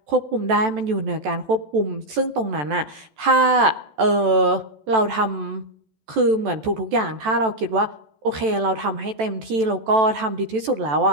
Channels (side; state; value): left; late; 14 ms